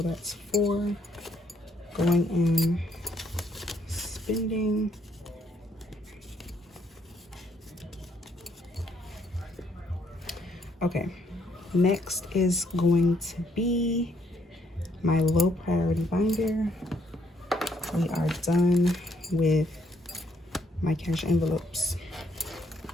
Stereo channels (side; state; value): both; normal; correlation 0.69